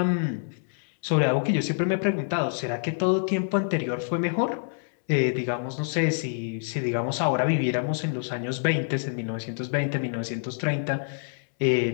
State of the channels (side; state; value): right; silent; 61 dB below the other